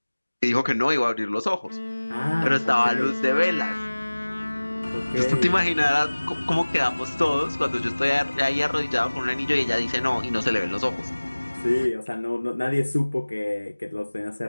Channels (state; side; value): inverted; both; correlation -1.00